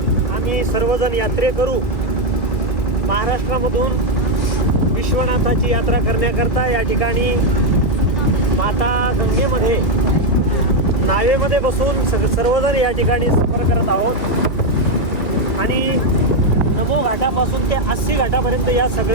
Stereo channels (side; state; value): right; late; 2.1 ms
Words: आम्ही सर्वजण यात्रेकरू महाराष्ट्रामधून विश्वनाथाची यात्रा करण्याकरता या ठिकाणी माता गंगेमध्ये नावेमध्ये बसून सर्वजण या ठिकाणी सफर करत आहोत. आणि नमो घाटापासून ते 80 घाटापर्यंत या